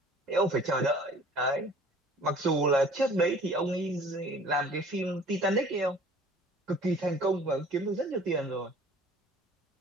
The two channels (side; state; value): both; normal; correlation 0.50